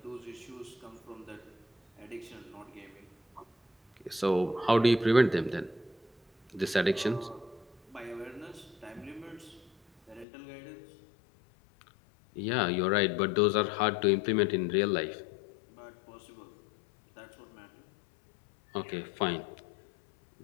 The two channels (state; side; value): drops out; right; at 10.2 s